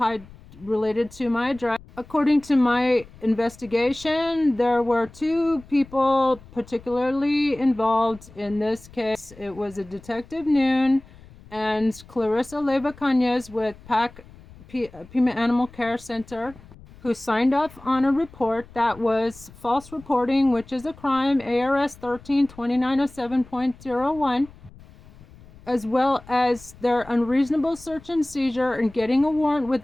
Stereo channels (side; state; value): left; noise; rumble, 22 dB below the sound